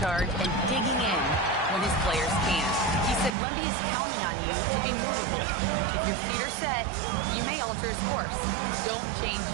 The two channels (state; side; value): drops out; left; at 3.4 s